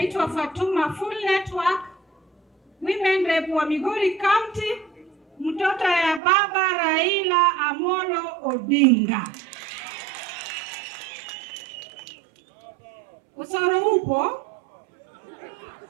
Fatuma Full Network, Women Rep wa Migori County, mtoto ya baba Raila Amolo Odinga. Usoro upo?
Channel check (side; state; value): left; drops out; at 6.2 s